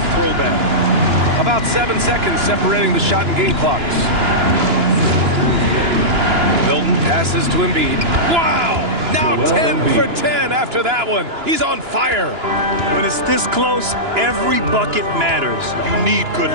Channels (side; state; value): left; late; 2.9 ms